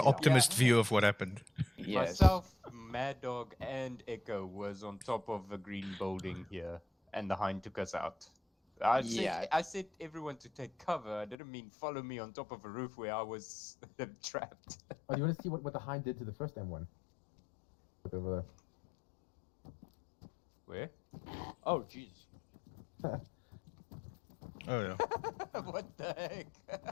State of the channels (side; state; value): right; drops out; at 11.4 s